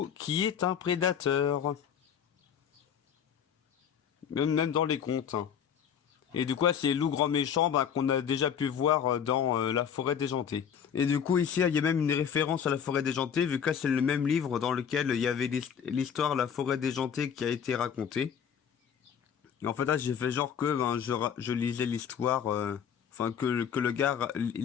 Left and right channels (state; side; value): quieter; right; 8.0 dB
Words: qui est un prédateur. Même dans les contes, hein. Et du coup, c'est loup grand méchant qu'on a déjà pu voir dans La Forêt déjantée. Et du coup, ici, il y a même une référence à La Forêt déjantée, vu que là, c'est le même livre dans lequel il y avait l'histoire La Forêt déjantée qui a été racontée. Et en fait, là, j'ai fait genre que je lisais l'histoire, que le gars